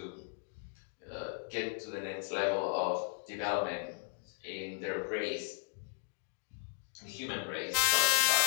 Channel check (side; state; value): right; silent; 54 dB below the other